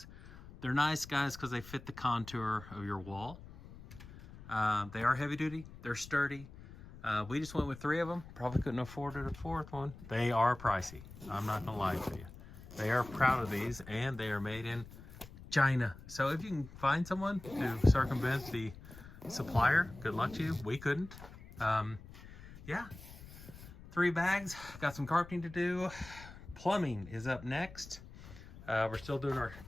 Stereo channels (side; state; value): left; noise; rumble, 17 dB below the sound